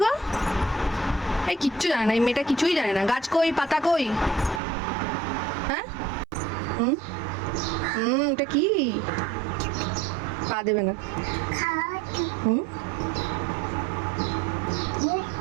গো? এই কিচ্ছু জানে না, এই মেয়েটা কিছুই জানে না। গাছ কই? পাতা কই? হ্যাঁ হুম হুম, এটা কি? পা দেবে না। হুম,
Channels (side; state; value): left; drops out; at 4.6 s